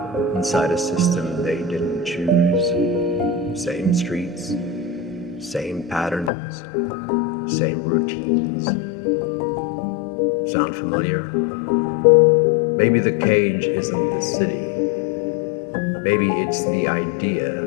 inside a system they didn't choose? Same streets, same patterns, same routines. Sound familiar? Maybe the cage isn't the city. Maybe it's the idea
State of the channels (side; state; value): right; drops out; at 6.3 s